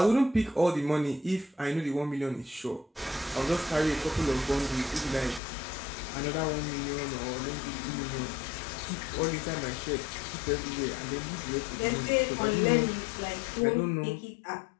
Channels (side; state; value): right; drops out; at 5.4 s